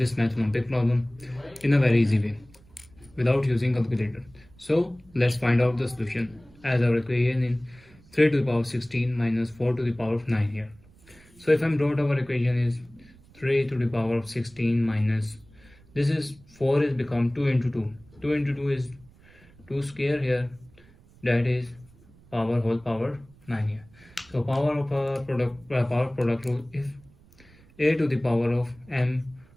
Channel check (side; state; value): right; noise; rumble, 26 dB below the sound